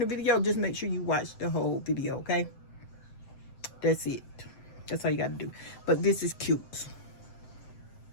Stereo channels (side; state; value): right; late; 7.8 ms